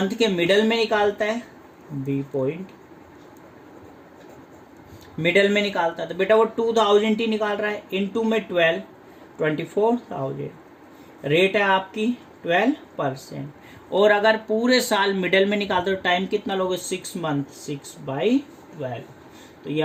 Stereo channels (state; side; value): identical; both; correlation 1.00